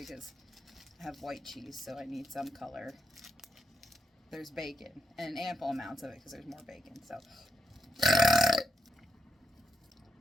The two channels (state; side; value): normal; both; correlation 0.82